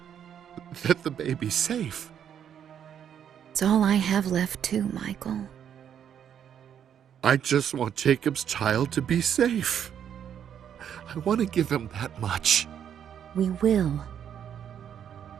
that the baby's safe. It's all I have left too, Michael. I just want Jacob's child to be safe. I want to give him that much. We will.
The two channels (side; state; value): left; quieter; 8.9 dB